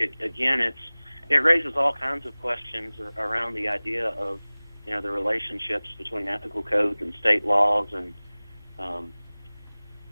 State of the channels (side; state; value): both; inverted; correlation -1.00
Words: raises all kinds of questions around the idea of, the relationships between ethical codes and state laws and,